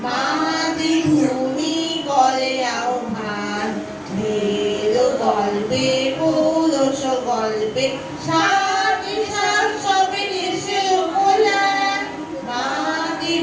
মাতৃভূমি করে আহ্বান। বেদ গল্পে পৌরষ গল্পে সবে এসে বললেন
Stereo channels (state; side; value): identical; both; correlation 1.00